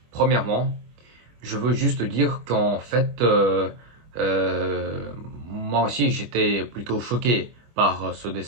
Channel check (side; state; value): left; late; 25 ms